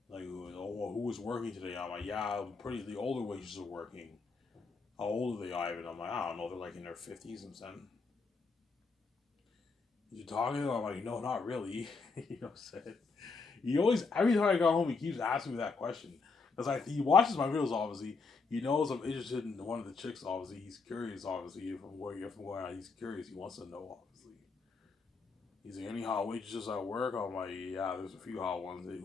Like, oh, well, who was working today? I'm like, yeah, pretty. The older waitresses are working. How old are they, Ivan? I'm like, I don't know. They're like in their 50s. I'm saying, you talking to them? I'm like, no, not really. You know what I'm saying? He always, every time I go home, he keeps asking me that question. Because he watches my videos, obviously. He knows I'm interested in one of the chicks, obviously. He's curious, obviously. From where he's curious, he wants to know, obviously. He's like, any hot waitresses at work? I'm like, yeah, there's a few hot ones.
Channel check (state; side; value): quieter; right; 4.4 dB